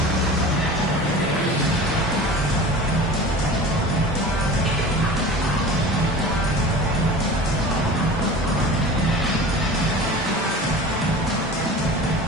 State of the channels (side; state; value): both; normal; correlation 0.37